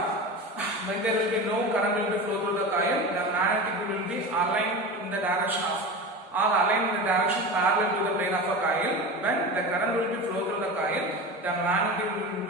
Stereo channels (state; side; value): normal; both; correlation 0.28